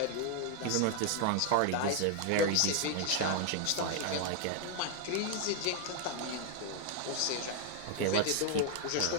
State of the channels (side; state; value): both; different; correlation 0.00